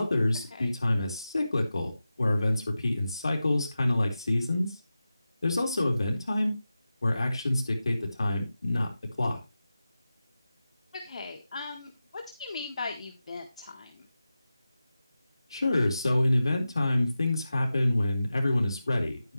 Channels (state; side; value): inverted; both; correlation -0.93